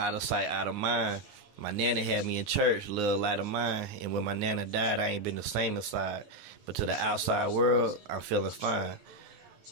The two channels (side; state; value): left; late; 9.7 ms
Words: of sight, out of mind. My nana had me in church, little light of mine. And when my nana died, I ain't been the same inside. But to the outside world, I'm feeling fine.